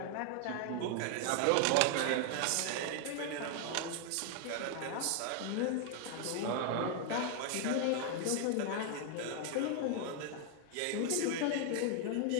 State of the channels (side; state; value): both; different; correlation 0.00